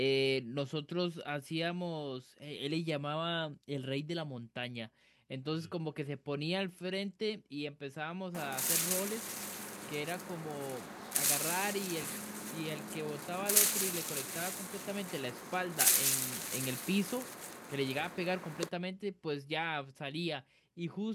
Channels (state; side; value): identical; both; correlation 1.00